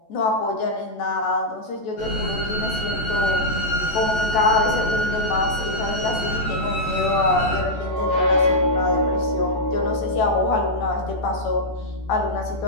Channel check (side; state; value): right; late; 14 ms